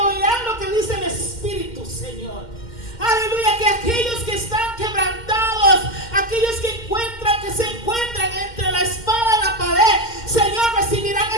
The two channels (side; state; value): right; late; 2.1 ms